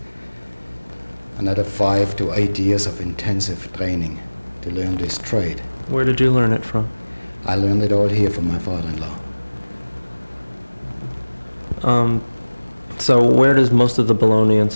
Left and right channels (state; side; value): inverted; both; correlation -1.00